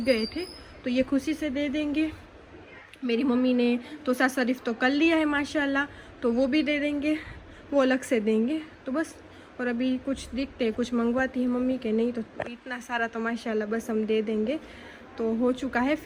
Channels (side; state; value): both; identical; correlation 1.00